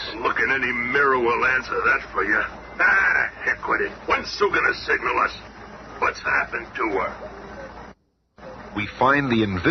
Look in any mirror will answer that for you. Ah, heck with it. When's Sue gonna signal us? What's happened to her? We find the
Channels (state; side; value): identical; both; correlation 1.00